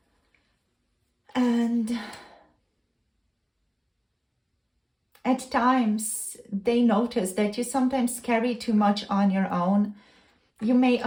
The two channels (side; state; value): both; identical; correlation 1.00